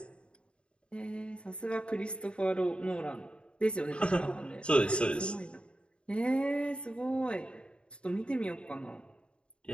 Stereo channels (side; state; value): right; late; 0.055 ms